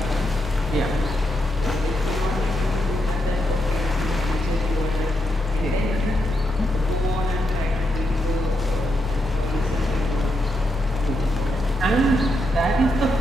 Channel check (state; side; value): normal; both; correlation 0.83